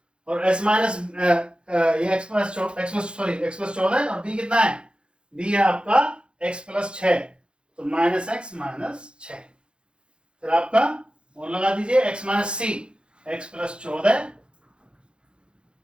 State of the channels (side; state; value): left; late; 0.055 ms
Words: और S माइनस ये x प्लस 14 और B कितना है? B है आपका x प्लस 6, तो माइनस x माइनस 6। फिर आपका और लगा दीजिए x minus C, x plus 14